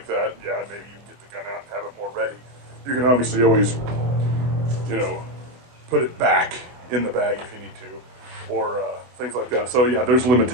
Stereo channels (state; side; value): late; left; 24 ms